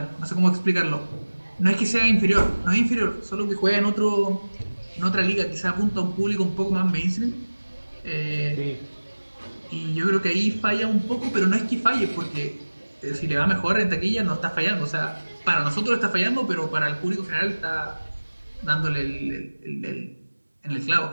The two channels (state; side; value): inverted; both; correlation -1.00